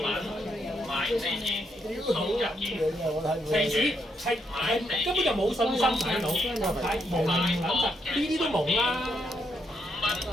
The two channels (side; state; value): both; normal; correlation 0.77